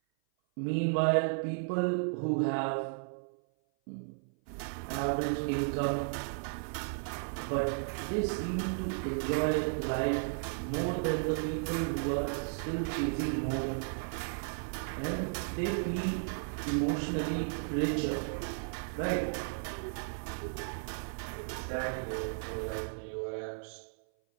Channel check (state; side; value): silent; left; 55 dB below the other